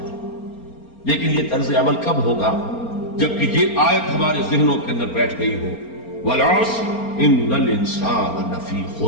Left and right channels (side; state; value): right; late; 4.3 ms